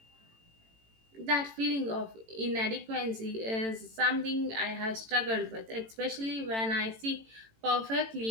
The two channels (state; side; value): late; left; 18 ms